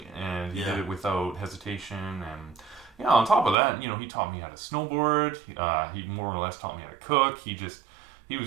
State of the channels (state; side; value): drops out; left; at 3.6 s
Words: and he did it without hesitation. And on top of that, he taught me how to snowboard. He more or less taught me how to cook. He was